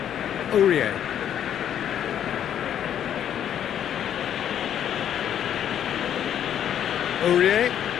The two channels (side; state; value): right; quieter; 9.9 dB